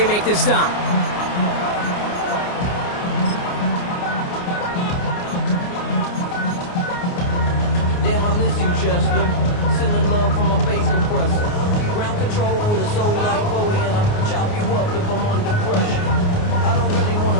make the stop. Damn, I miss you, Chester. Sending love from a bass compressor. Ground control with a soul like Bowie, and I chop you up if I'm under pressure. I don't really want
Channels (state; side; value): late; right; 29 ms